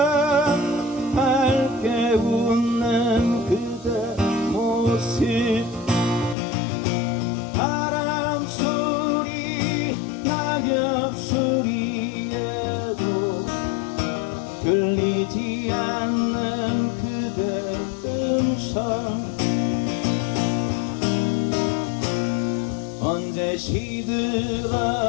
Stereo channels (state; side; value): drops out; right; at 6.4 s